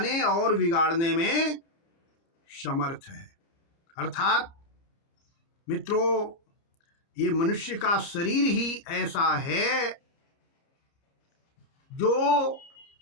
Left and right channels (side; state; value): right; late; 30 ms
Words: और बिगाड़ने में समर्थ है। अर्थात मित्रों, ये मनुष्य का शरीर ही ऐसा है जो